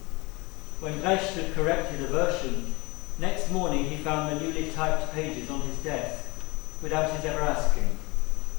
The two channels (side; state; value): right; quieter; 24.8 dB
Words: When Brecht had corrected a version, next morning he found the newly typed pages on his desk, without his ever asking.